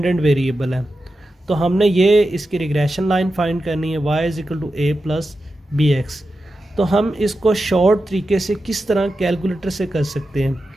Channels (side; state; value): both; normal; correlation 0.91